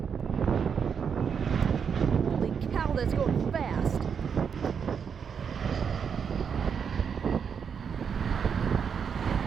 Holy cow, that's going fast.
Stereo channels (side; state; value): left; quieter; 6.9 dB